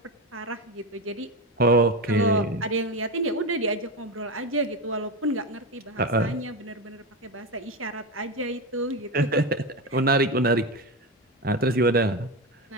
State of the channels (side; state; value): both; normal; correlation 0.16